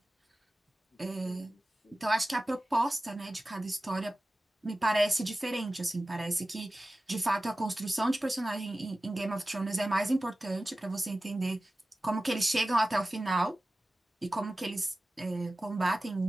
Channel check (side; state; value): both; normal; correlation 0.96